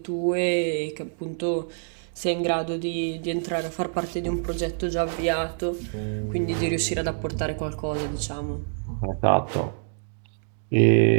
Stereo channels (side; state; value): left; silent; digital silence